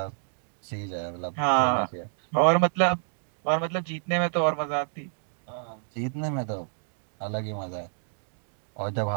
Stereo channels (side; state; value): left; silent; digital silence